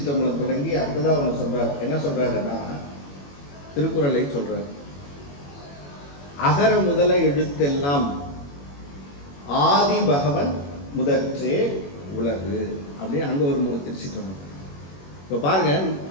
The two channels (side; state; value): right; late; 21 ms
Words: தொடங்கி அடுத்ததா ஒன்று சொல்றார். என்ன சொல்றாருன்னா, திருக்குறளை சொல்றார். அகர முதல எழுத்தெல்லாம் ஆதி பகவன் முதற்றே உலகு அப்படின்னு அங்க ஒரு 3 திருச்சிற்றம்பலம். இப்போ பாருங்க,